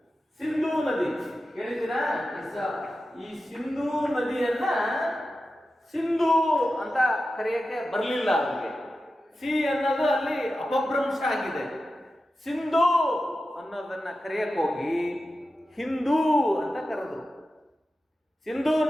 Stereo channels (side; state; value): both; normal; correlation 0.92